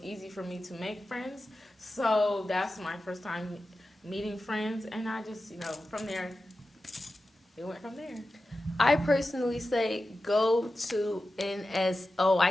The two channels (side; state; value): both; normal; correlation 0.93